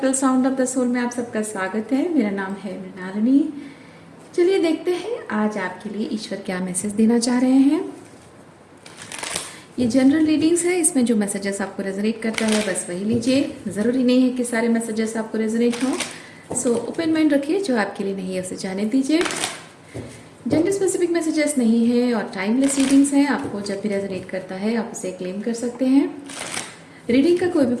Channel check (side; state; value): both; identical; correlation 1.00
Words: sound of the soul में आप सबका स्वागत है। मेरा नाम है मृणालिनी। चलिए देखते हैं आज आपके लिए ईश्वर क्या मैसेज देना चाह रहे हैं। ये जनरल रीडिंग्स है, इसमें जो मैसेजेस आपको रेजोनेट करता है बस वही लीजिए। ज़रूरी नहीं है कि सारे मैसेजेस आपको रेजोनेट हों, सो ओपन माइंड रखिए। जो आपके लिए नहीं है उसे जाने दीजिए। जेंडर स्पेसिफिक मैसेजेस नहीं है और टाइमलेस रीडिंग्स हैं। आपको जब भी रेजोनेट करता है आप उसे क्लेम कर सकते हैं। रीडिंग का कोई भी